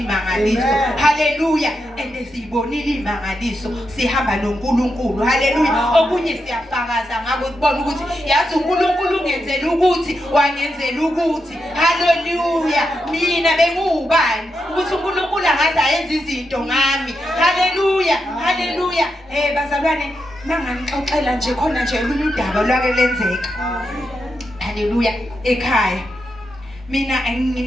haleluya siyibonile imangaliso sihamba noNkulunkulu haleluya okunye siyafakaza ngako ukubona ukuthi yazi uNkulunkulu ungenzela ukuthi wangenzela ukuthi haleluya mina bengubani ukuthi uNkulunkulu angaze ayenze izinto ngami haleluya bazalwane mangangixoxela nje khona nje olunye udaba lwake lenzeka haleluya ekhaya mina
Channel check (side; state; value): both; normal; correlation 0.85